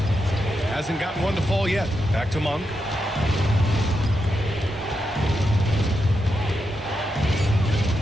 Hasn't gotten one to fall yet. Back to Monk.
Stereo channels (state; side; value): normal; both; correlation 0.85